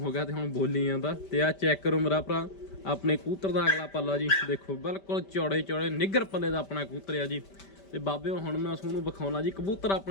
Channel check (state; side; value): late; right; 5.1 ms